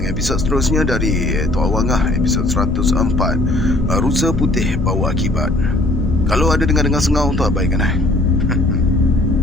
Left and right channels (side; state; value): left; noise; rumble, 7 dB below the sound